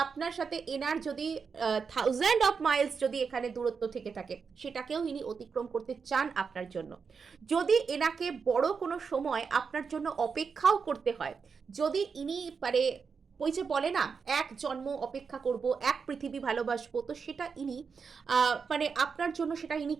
আপনার সাথে এনার যদি 1000 অফ মাইলস যদি এখানে দূরত্ব থেকে থাকে, সেটাকেও ইনি অতিক্রম করতে চান আপনার জন্য। যদি এনাকে বড় কোনো সময় আপনার জন্য অপেক্ষাও করতে হয়, যদি ইনি মানে ওই যে বলে না, এক জন্ম অপেক্ষা করব, এক পৃথিবী ভালোবাসবো, তো সেটা ইনি মানে আপনার জন্য সেটা ইনি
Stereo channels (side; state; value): left; quieter; 5.6 dB